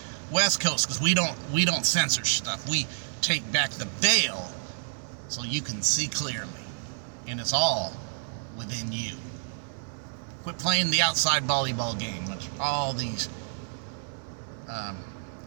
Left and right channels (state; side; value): silent; left; 59 dB below the other